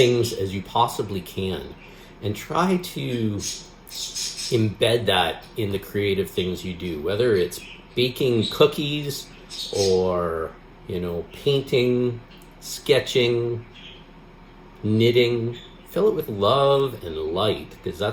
as you possibly can. And try to embed that in the creative things you do, whether it's baking cookies or, painting, sketching, knitting. Fill it with love and light, because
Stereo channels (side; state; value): both; identical; correlation 1.00